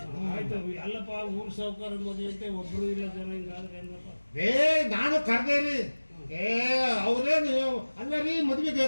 ಆಯ್ತು ಅಲ್ಲಪ್ಪ, ಊರ್ ಸಾವುಕಾರ ಮದುವೆ ಅಂತ ಒಬ್ರು ಇಲ್ಲ ಜನ. ಹಿಂಗಾದ್ರೆ ಹೆಂಗಪ್ಪ? ನಾನು ಕರ್ದೇರಿ. ಅವ್ರೇನು ಅಲ್ಲ ರೀ, ಮದ್ವೆಗೆ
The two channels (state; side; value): inverted; both; correlation -1.00